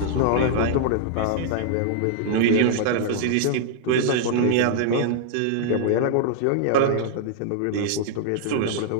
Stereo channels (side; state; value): both; different; correlation -0.01